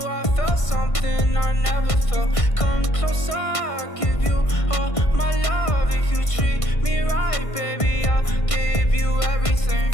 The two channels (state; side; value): late; right; 1.5 ms